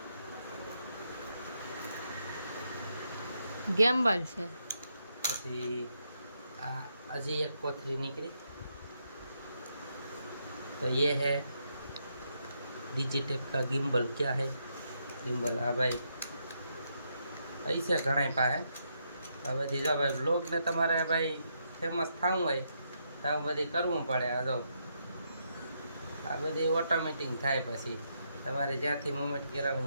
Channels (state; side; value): inverted; both; correlation -0.79